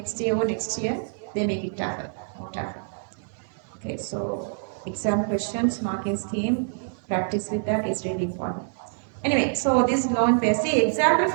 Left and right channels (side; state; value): left; silent; 61 dB below the other